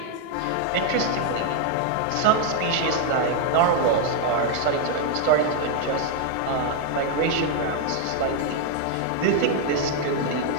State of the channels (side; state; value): both; different; correlation 0.00